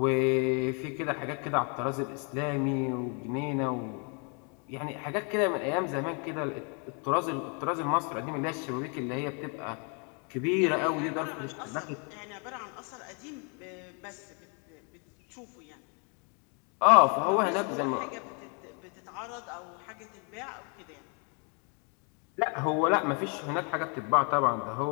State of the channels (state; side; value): quieter; right; 36.8 dB